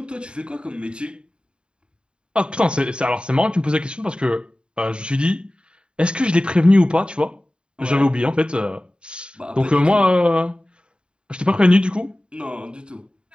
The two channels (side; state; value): left; late; 0.051 ms